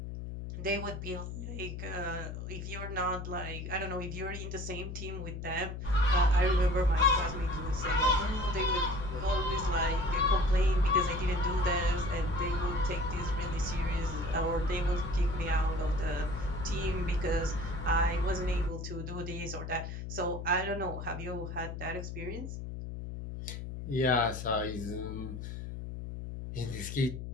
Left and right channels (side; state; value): left; noise; hum, 7 dB below the sound